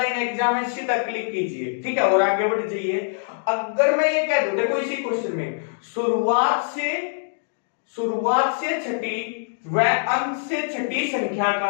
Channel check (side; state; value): right; silent; digital silence